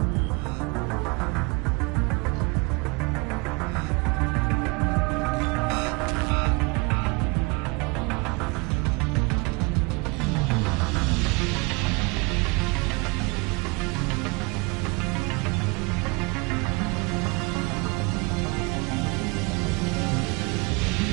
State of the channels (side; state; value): left; quieter; 28.0 dB